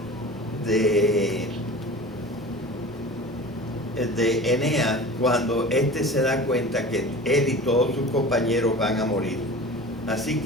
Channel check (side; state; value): both; normal; correlation 0.37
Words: de Eneas cuando éste se da cuenta que él y todos sus compañeros van a morir. Así